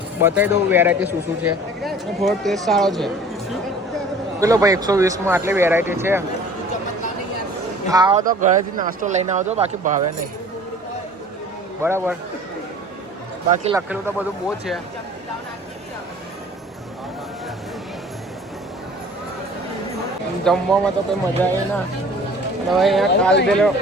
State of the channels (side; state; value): both; normal; correlation 0.46